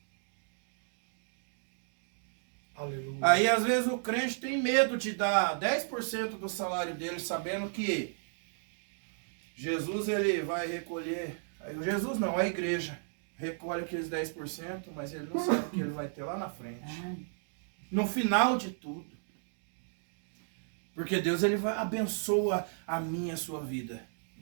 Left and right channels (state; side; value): silent; left; digital silence